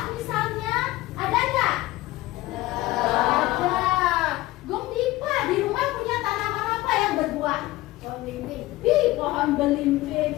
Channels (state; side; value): quieter; right; 18.2 dB